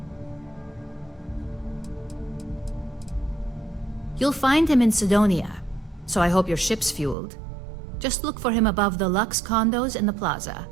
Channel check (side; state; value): left; drops out; at 7.2 s